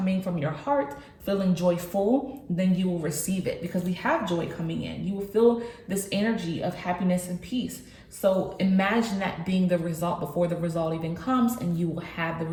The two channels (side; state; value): both; identical; correlation 1.00